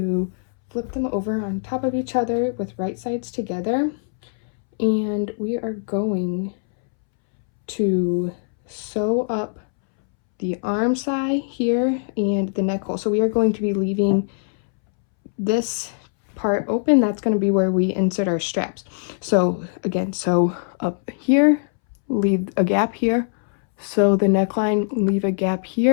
flip them over on top of each other with right sides together, and we are going to sew up the arm side here and the neck hole. So we are going to be leaving this part open. That's going to be where we insert our straps. So again, sew up here, leave a gap here, sew the neckline, leave a gap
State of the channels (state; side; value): silent; right; 64 dB below the other